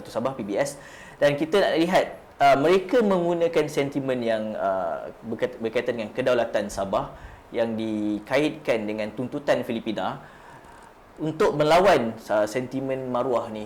Sabah PBS. Dan kita nak lihat mereka menggunakan sentimen yang berkaitan dengan kedaulatan Sabah yang dikaitkan dengan tuntutan Filipina untuk melawan sentimen maruah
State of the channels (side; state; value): both; identical; correlation 1.00